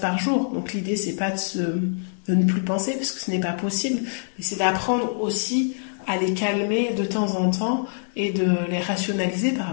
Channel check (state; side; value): silent; right; digital silence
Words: jour, donc l'idée c'est pas de ne plus penser, parce que ce n'est pas possible, mais c'est d'apprendre aussi à les calmer de temps en temps et de les rationaliser par